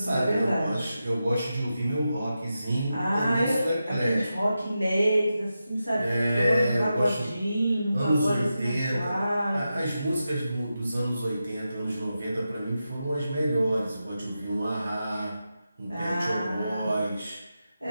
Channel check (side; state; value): both; inverted; correlation -0.90